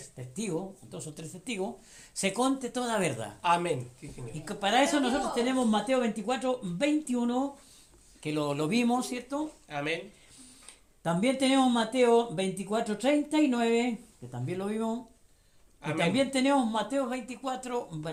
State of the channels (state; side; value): identical; both; correlation 1.00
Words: testigos, 2 o 3 testigos, se conte toda verdad. Amén. Sí, Señor. Y que para eso nosotros tenemos Mateo 24, 21, que lo vimos, ¿cierto? Amén. También tenemos Mateo 24, 39, que también lo vimos. Y Amén. también tenemos Mateo 24,